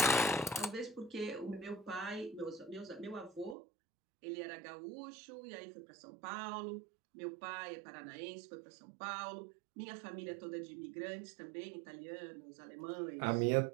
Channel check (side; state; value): left; drops out; at 3.6 s